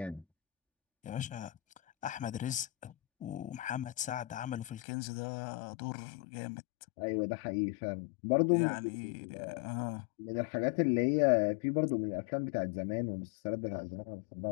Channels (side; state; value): right; drops out; at 4.8 s